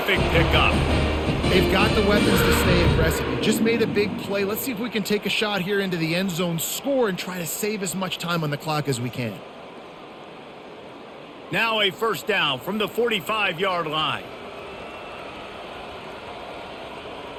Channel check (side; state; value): both; identical; correlation 1.00